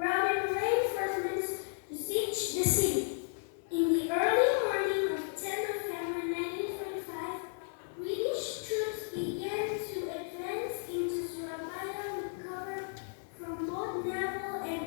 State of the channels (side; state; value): right; silent; 55 dB below the other